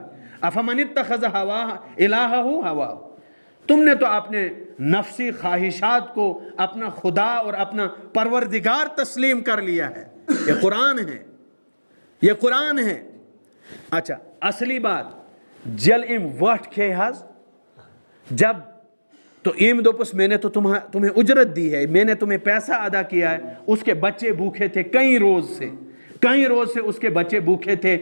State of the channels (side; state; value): both; inverted; correlation -1.00